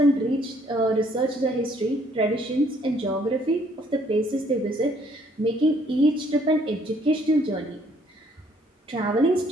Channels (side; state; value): both; normal; correlation 0.64